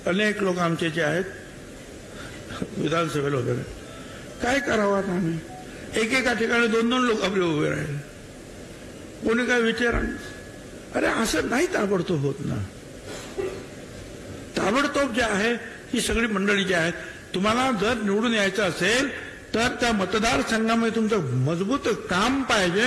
अनेक लोक आमचे जे आहेत विधानसभेला उभे राहिले. काय करावं आता आम्ही? एकेका ठिकाणी 2-2 लोक आपले उभे राहिले. कोणी काय विचार? अरे असं नाही ताबडतोब होत ना. ताबडतोब जे आहे ही सगळी मंडळी जी आहेत, तुम्हाला जर निवडून यायचं असेल तर त्या मतदारसंघामध्ये तुमचं मजबूत काम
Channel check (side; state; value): both; identical; correlation 1.00